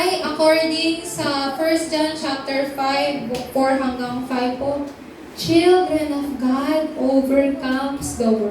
according sa 1 John chapter 5, 4 hanggang 5 po? Children of God overcomes the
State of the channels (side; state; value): both; identical; correlation 1.00